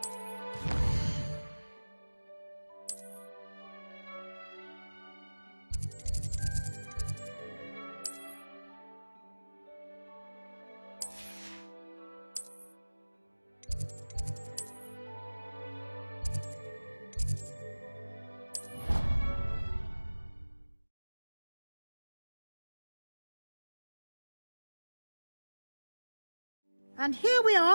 And here we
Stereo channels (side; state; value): both; inverted; correlation -1.00